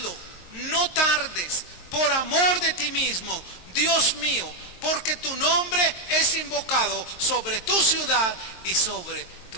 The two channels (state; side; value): late; right; 22 ms